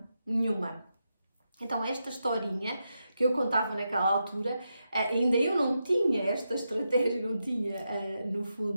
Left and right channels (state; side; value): inverted; both; correlation -0.86